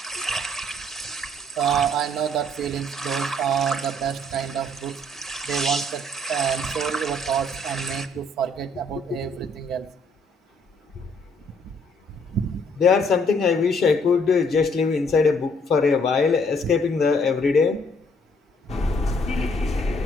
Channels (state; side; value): normal; both; correlation 0.65